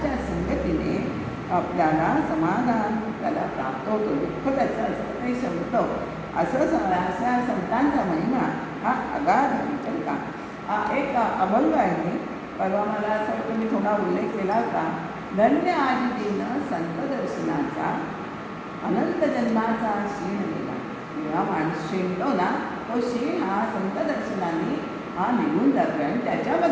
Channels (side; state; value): both; identical; correlation 1.00